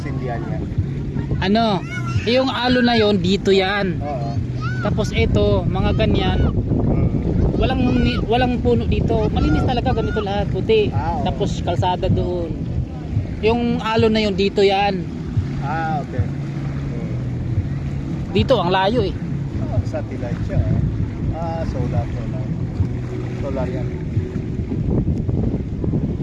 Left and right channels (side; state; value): both; identical; correlation 1.00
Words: sindihan niya. ano, yung alo na yon dito yan. Oo. Tapos ito, mga ganyan, walang puno dito. Malinis talaga, ganito lahat, puti. Oo. Tapos kalsada doon. Yung alo na yon dito yan. Ah, okay. Dito ang layo eh. Satellite siya. Ah, solar. Solar yan.